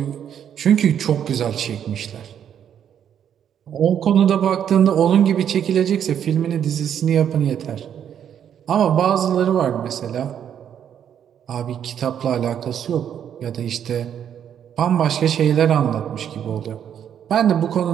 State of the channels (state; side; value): quieter; left; 9.1 dB